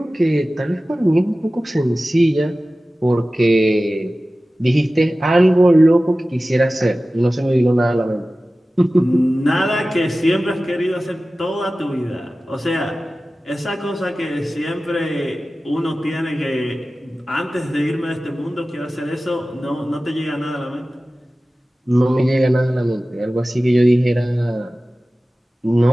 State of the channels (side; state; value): both; normal; correlation 0.96